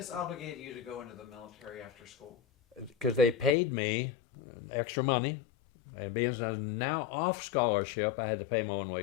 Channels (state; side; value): drops out; right; at 3.6 s